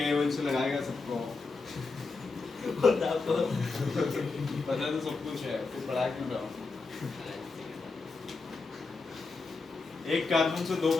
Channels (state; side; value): quieter; right; 4.0 dB